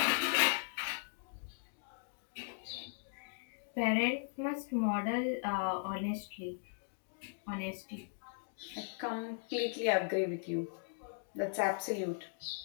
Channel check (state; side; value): silent; right; digital silence